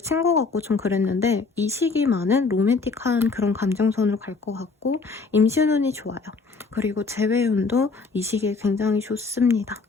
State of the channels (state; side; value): quieter; right; 4.2 dB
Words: 같고 좀 그랬는데 이 시기만은 로맨틱한 그런 감정선으로 갈 것 같고 임신운이 좋아요. 그리고 재회운도 이 시기에 굉장히 좋습니다.